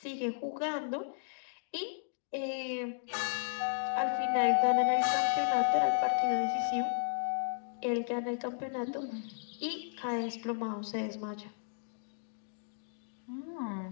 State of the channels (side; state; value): right; silent; digital silence